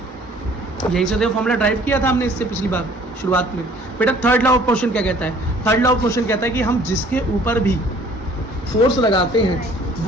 यही से देखो फॉर्मूला ड्राइव किया था हमने इससे पिछली बार शुरुआत में। बेटा थर्ड लॉ ऑफ मोशन क्या कहता है, थर्ड लॉ ऑफ मोशन कहता है कि हम जिसके ऊपर भी फोर्स लगाते हैं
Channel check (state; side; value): normal; both; correlation 0.55